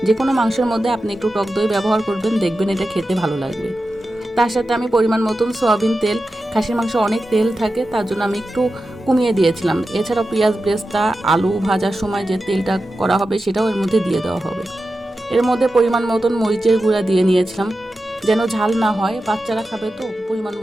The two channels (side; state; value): both; normal; correlation 0.92